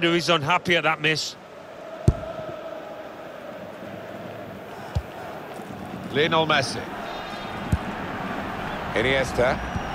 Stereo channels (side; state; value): both; identical; correlation 1.00